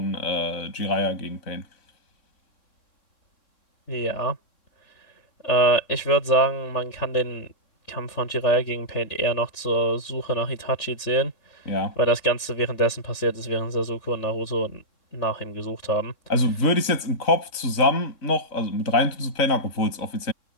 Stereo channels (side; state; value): right; late; 3.6 ms